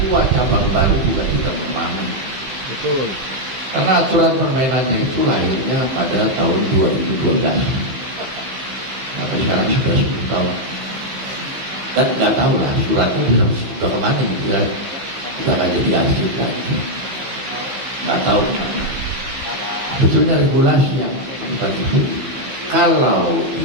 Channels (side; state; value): left; late; 16 ms